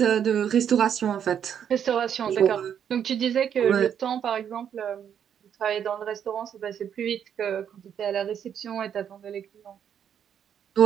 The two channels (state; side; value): quieter; left; 8.6 dB